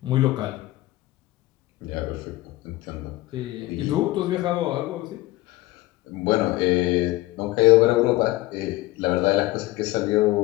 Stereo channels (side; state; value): right; quieter; 18.6 dB